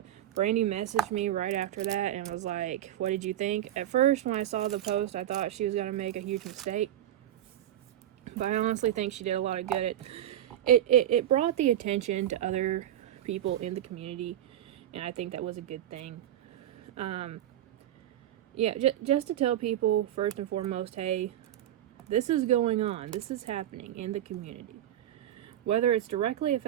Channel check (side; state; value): left; quieter; 12.0 dB